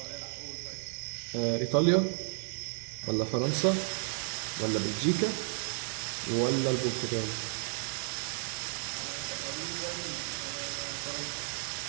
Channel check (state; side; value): silent; left; digital silence